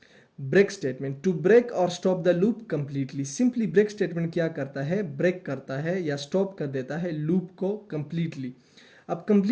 ब्रेक स्टेटमेंट, टू ब्रेक और stop the loop completely. Simply break statement क्या करता है? ब्रेक करता है या स्टॉप कर देता है लूप को कंप्लीटली। अब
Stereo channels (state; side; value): identical; both; correlation 1.00